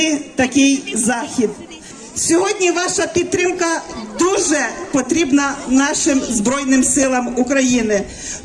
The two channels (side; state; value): both; identical; correlation 1.00